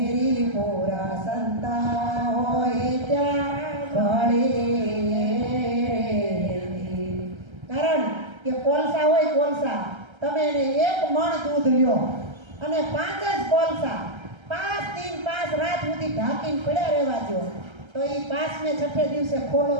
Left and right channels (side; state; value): left; late; 1.3 ms